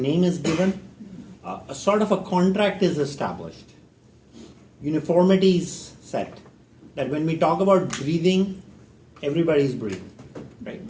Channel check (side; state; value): both; identical; correlation 1.00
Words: name is given, a sort of a contract is established. Uniformity is set. That when we talk about breathing, everybody's breathing, right?